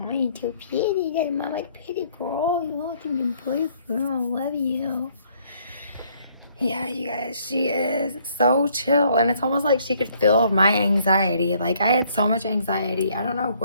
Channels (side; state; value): both; inverted; correlation -0.65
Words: you're too pretty. You're my like pretty girl. You want to be boyfriend. I love you. Yeah, you guys, she is so chill, and it's almost like she could feel my anxiety. Like, I had so much anxiety. I don't know